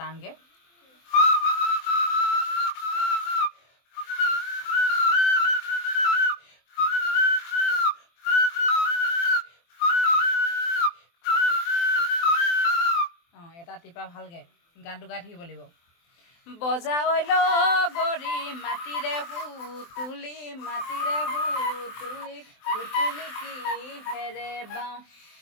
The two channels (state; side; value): late; right; 24 ms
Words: টানকৈ। অঁ, এটা টিপা ভালকৈ গানটো গাই থাকিব লাগিব। বজাই গৰি মাটিৰে হুতুলি মাটিৰে হুতুলি হুতুলি কিহেৰে বাওঁ,